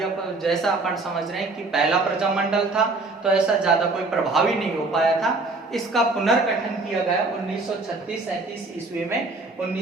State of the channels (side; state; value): left; quieter; 3.4 dB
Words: पर जैसा अपन समझ रहे हैं कि पहला प्रजामंडल था तो ऐसा ज्यादा कोई प्रभावी नहीं हो पाया था। इसका पुनर्गठन किया गया 1936-37 ईस्वी में।